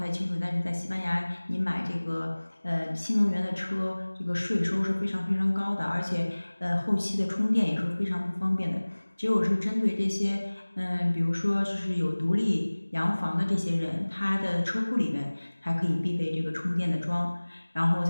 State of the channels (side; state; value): both; inverted; correlation -1.00